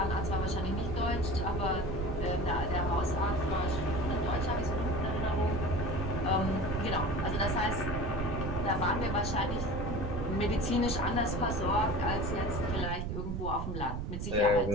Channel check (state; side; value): noise; right; rumble, 3 dB below the sound